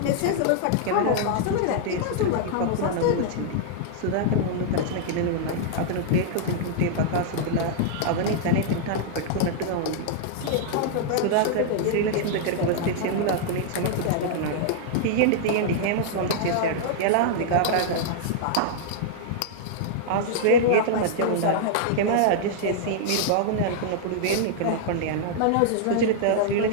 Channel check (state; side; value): different; both; correlation -0.01